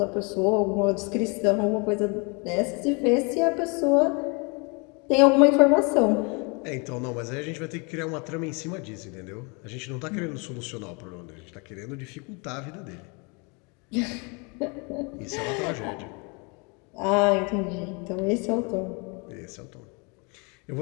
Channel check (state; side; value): quieter; right; 31.6 dB